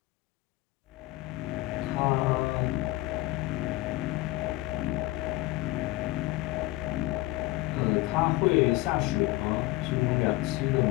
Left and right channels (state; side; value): quieter; right; 19.1 dB